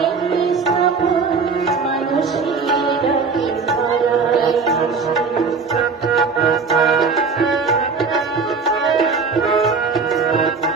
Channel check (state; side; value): quieter; left; 4.9 dB